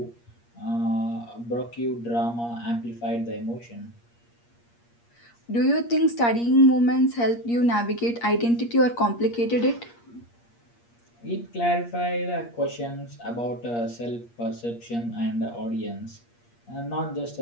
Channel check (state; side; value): late; right; 8.5 ms